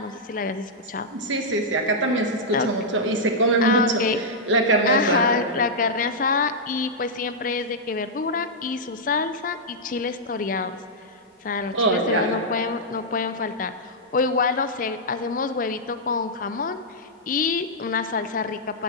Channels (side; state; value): both; normal; correlation -0.07